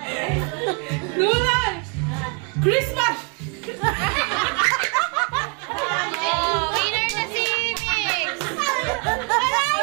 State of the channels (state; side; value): quieter; left; 34.6 dB